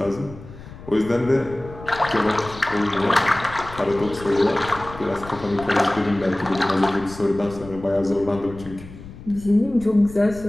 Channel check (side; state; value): left; noise; rumble, 16 dB below the sound